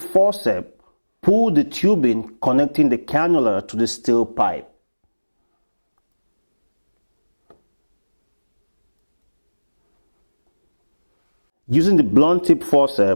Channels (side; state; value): both; inverted; correlation -1.00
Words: pull the tubing connecting the cannula to the steel pipe. Using the blunt tip